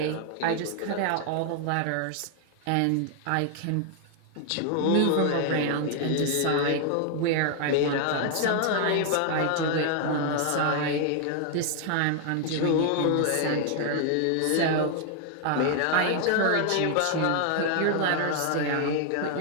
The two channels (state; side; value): different; both; correlation 0.00